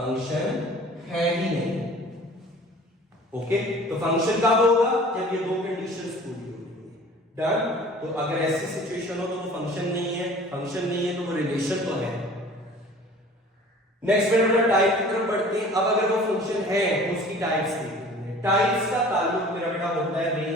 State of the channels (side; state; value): both; normal; correlation 0.46